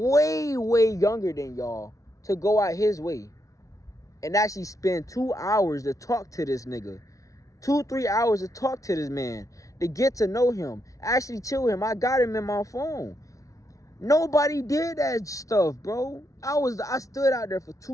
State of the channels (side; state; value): right; late; 0.16 ms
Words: way younger than y'all, to go out his way and actually spend 2 hours to talk to this nigga. 2-3 hours to talk to this man, to get to know him, actually chill him. I got him in my phone. Nobody did that stuff, bro. I stood out there for